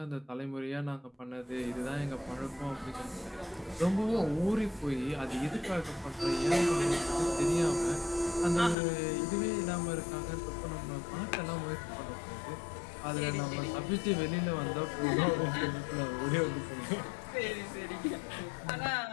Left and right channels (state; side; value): drops out; right; at 8.8 s